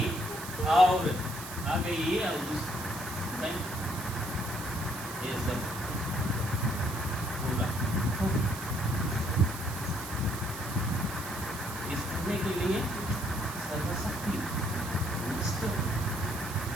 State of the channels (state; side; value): noise; right; hiss, 11 dB below the sound